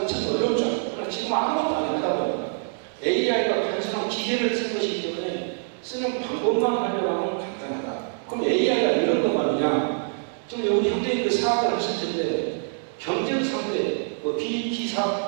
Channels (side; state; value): left; silent; 62 dB below the other